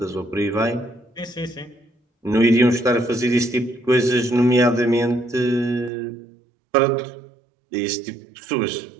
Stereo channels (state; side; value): drops out; left; at 5.9 s